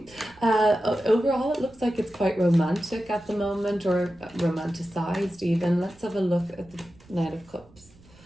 Overall, it looks like it's quite romantic at the moment, or romanticized even. Let's have a look at the Knight of Cups.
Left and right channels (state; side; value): noise; right; rumble, 26 dB below the sound